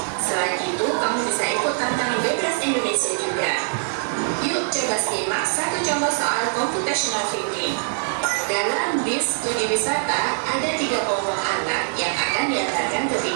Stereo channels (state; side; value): silent; left; 61 dB below the other